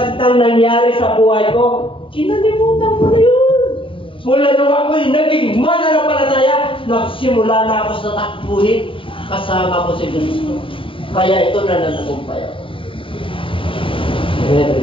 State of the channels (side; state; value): right; late; 0.25 ms